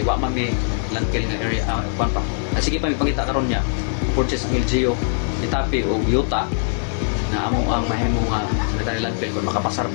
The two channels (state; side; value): silent; right; 65 dB below the other